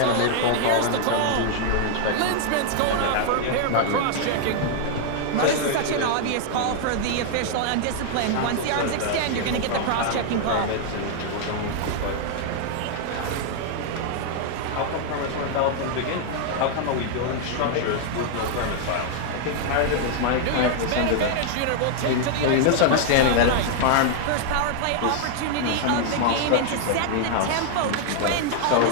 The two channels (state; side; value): different; both; correlation 0.00